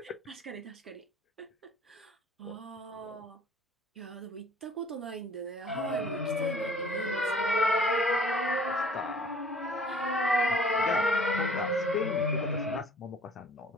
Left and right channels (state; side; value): normal; both; correlation 0.53